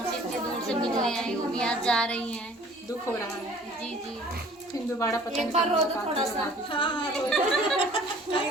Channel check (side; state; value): both; normal; correlation 0.51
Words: इतने दूर से मिलने आई, वो भी आज जा रही हैं। दुख हो रहा है। जी जी। फिर दोबारा पता नहीं एक बार रो दो थोड़ा सा। हाँ